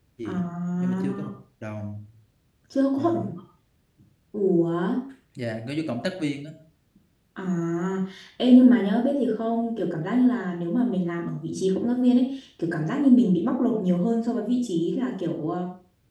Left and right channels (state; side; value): identical; both; correlation 1.00